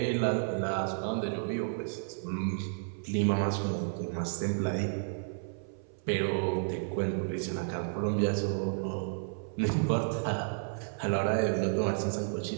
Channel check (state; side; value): silent; left; 56 dB below the other